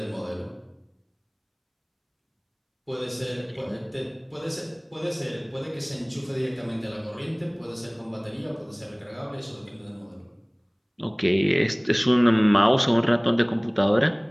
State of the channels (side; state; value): both; identical; correlation 1.00